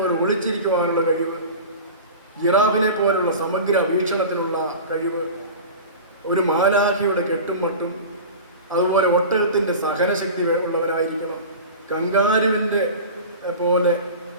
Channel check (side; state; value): both; inverted; correlation -0.34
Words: ഒളിച്ചിരിക്കുവാനുള്ള കഴിവ്, ജിറാഫിനെ പോലുള്ള സമഗ്ര വീക്ഷണത്തിനുള്ള കഴിവ്, ഒരു മാലാഖിയുടെ കെട്ടും മട്ടും, അതുപോലെ ഒട്ടകത്തിൻ്റെ സഹനശക്തി ഉള്ളവരായിരിക്കണം. കങ്കാരുവിൻ്റെ പോലെ